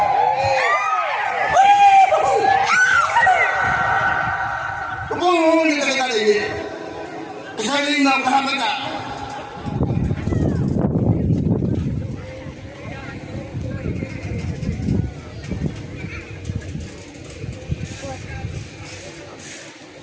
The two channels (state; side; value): identical; both; correlation 1.00